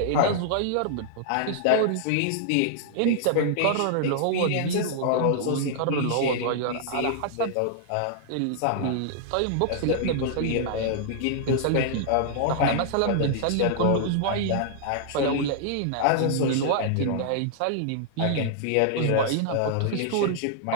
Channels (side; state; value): both; different; correlation -0.01